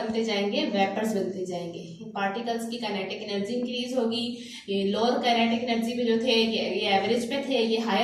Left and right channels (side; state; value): both; identical; correlation 1.00